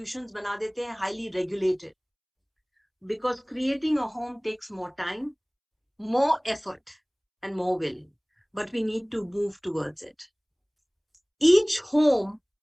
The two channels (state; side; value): identical; both; correlation 1.00